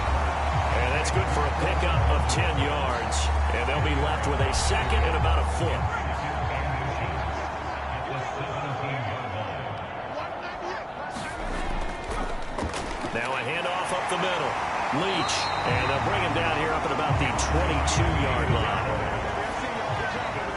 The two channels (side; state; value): both; identical; correlation 1.00